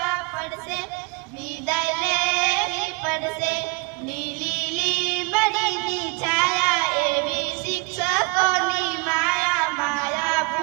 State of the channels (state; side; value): quieter; left; 28.4 dB